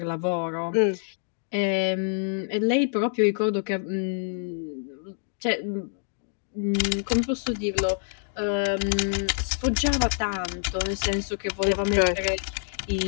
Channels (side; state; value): right; silent; digital silence